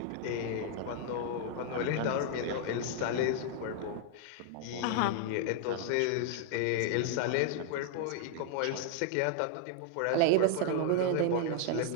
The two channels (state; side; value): different; both; correlation 0.00